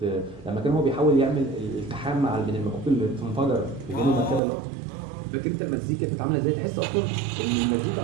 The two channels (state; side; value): drops out; left; at 4.4 s